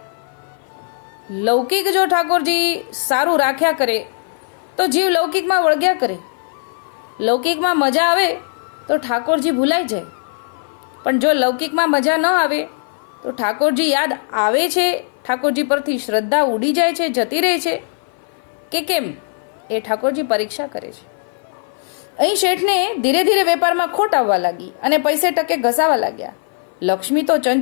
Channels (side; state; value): right; silent; 57 dB below the other